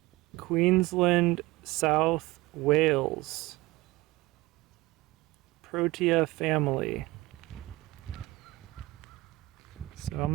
Queensland, South Wales, Protea family. So I'm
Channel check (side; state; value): left; quieter; 20.1 dB